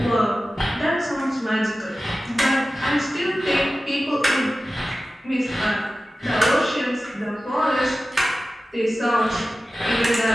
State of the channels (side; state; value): both; normal; correlation 0.95